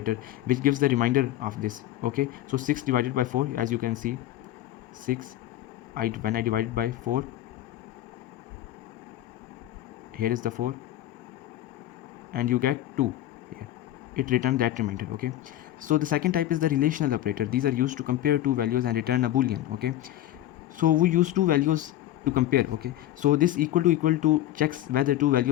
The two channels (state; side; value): quieter; right; 13.4 dB